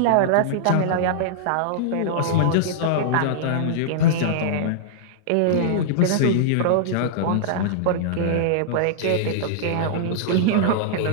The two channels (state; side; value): different; both; correlation -0.02